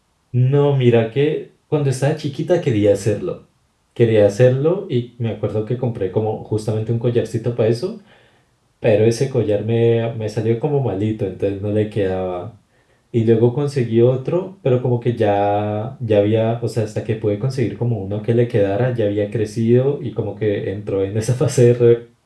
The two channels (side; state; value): both; identical; correlation 1.00